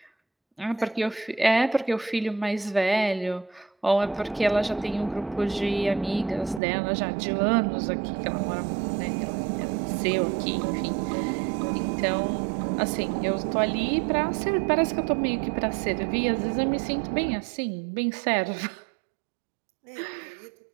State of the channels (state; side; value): drops out; left; at 6.6 s